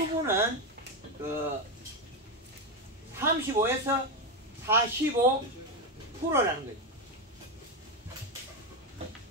35에서 45%라는 거죠.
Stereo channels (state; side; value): normal; both; correlation 0.10